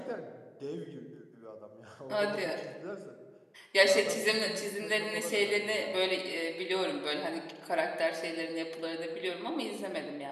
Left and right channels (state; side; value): identical; both; correlation 1.00